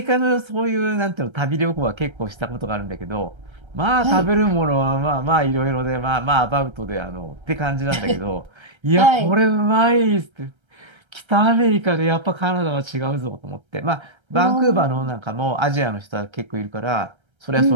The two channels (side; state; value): left; late; 1.3 ms